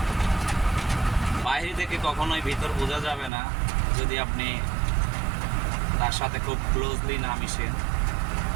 বাইরে থেকে কখনোই ভিতর বোঝা যাবে না যদি আপনি তার সাথে খুব ক্লোজলি না মিশেন।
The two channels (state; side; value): drops out; left; at 3.3 s